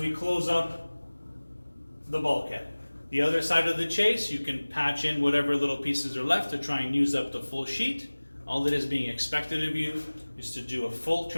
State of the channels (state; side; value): inverted; both; correlation -1.00